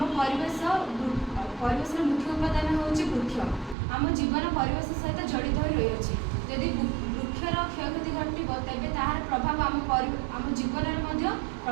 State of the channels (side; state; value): left; drops out; at 3.8 s